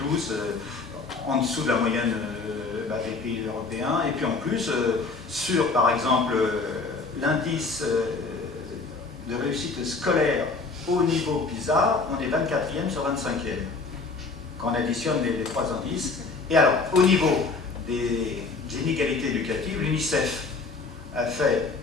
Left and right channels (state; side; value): quieter; right; 4.1 dB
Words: en dessous de la moyenne des pays européens, et puis en plus, sur par exemple l'indice de réussite scolaire au niveau PISA, on est 24e sur 25e, quand on additionne les trois indices. Et alors, au niveau des inégalités éducatives, l'UNICEF a fait